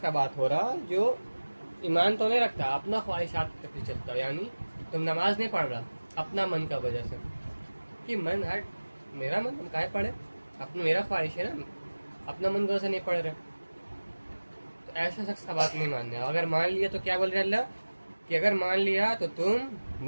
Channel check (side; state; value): both; inverted; correlation -1.00